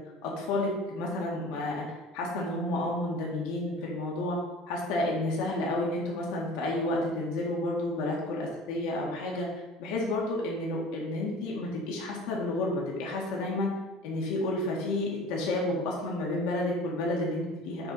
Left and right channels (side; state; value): both; normal; correlation 0.42